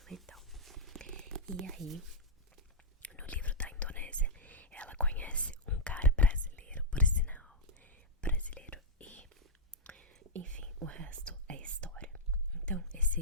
e tal. E aí, no livro da Indonésia, ela conhece um cara brasileiro, por sinal, brasileiro, e enfim, o resto é história. Então,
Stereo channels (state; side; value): normal; both; correlation -0.06